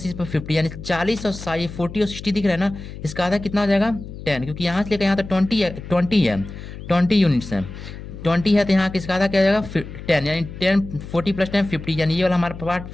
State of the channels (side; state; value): left; noise; hum, 12 dB below the sound